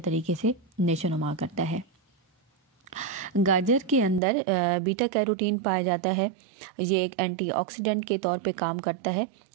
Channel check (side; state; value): left; drops out; at 4.2 s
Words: से नेशोनुमा करता है। गाजर के अंदर बीटा कैरोटीन पाया जाता है, ये एक एंटीऑक्सीडेंट के तौर पे काम करता है